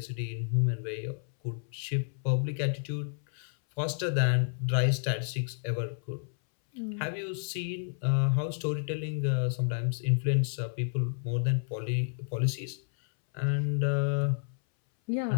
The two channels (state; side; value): silent; right; 57 dB below the other